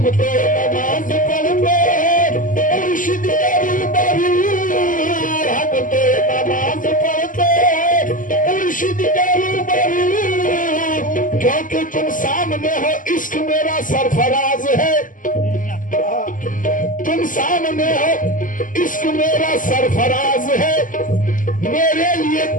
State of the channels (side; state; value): right; late; 0.38 ms